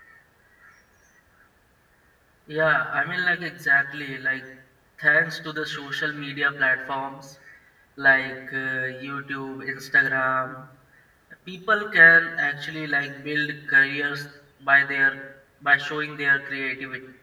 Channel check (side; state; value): both; identical; correlation 1.00